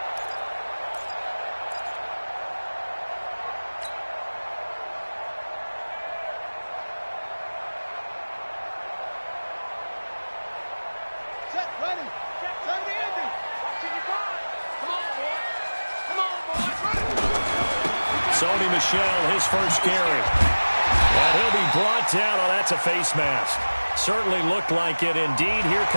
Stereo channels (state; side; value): inverted; both; correlation -1.00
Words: Michelle, his first carry. And he'll be brought down. Oh, that's a face mask. Certainly looked like it. Indeed, here